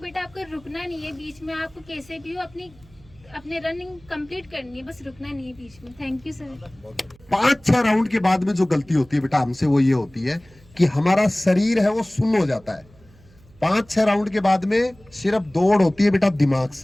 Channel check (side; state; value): right; noise; hum, 27 dB below the sound